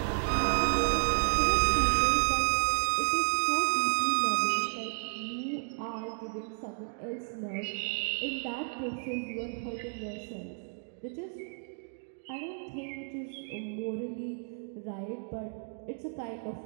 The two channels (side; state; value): left; silent; 56 dB below the other